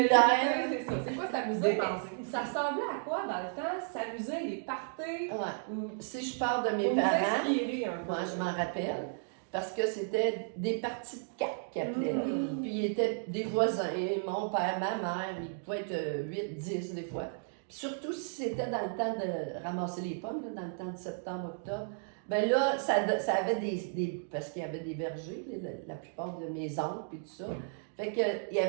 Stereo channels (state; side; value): silent; left; digital silence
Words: C'est ça. C'est quoi s'amuser? Dépenser. Mais ça ressemblait à quoi dans le temps? S'amuser, les parties? Ouais. Ou Si je parle de mes pour nous parents, inspirer un peu. moi, je m'en rappelle, parce que c'était des parties de cartes qu'ils appelaient. là. Mhm. Puis ils étaient des voisins, mon père, ma mère, ils pouvaient être 8, 10 des fois. Puis surtout si c'était dans le temps de ramasser les pommes, là, dans le temps de septembre, octobre, ben là, ça avait des parce qu'il y avait des vergers, la plupart de mes oncles et tout ça. Fait que il y